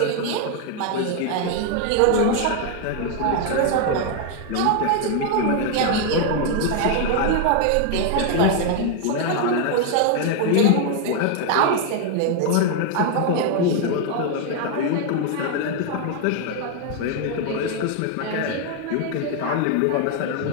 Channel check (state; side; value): different; both; correlation 0.00